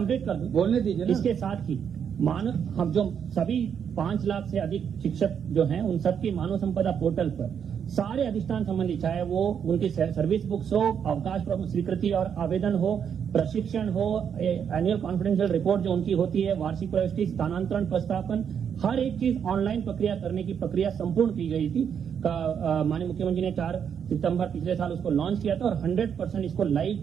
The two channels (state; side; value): quieter; left; 7.8 dB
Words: कर दूं, बोलने दीजिए। इसके साथ ही हम जो सभी 5 लाख से अधिक शिक्षक जो हैं उन सबकी मानव संपदा पोर्टल पर सारे अधिष्ठान संबंधी, चाहे वो उनकी सर्विस बुक्स हो, अवकाश स्वीकृति और आवेदन हो, प्रशिक्षण हो, एनुअल कॉन्फिडेंशियल रिपोर्ट जो उनकी होती है, वार्षिक प्रविष्टि, स्थानांतरण प्रस्तापन, हर एक चीज ऑनलाइन प्रक्रिया करने की प्रक्रिया संपूर्ण की गई थी। माननीय मुख्यमंत्री ने 4 सितंबर पिछले साल उसको लॉन्च किया था और 100% इसको